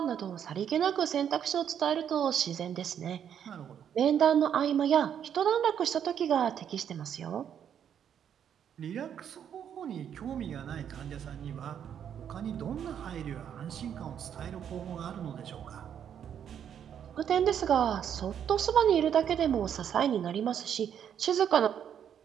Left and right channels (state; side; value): quieter; left; 8.8 dB